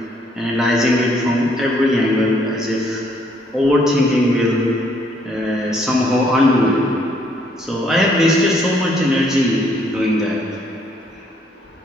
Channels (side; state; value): both; normal; correlation 0.67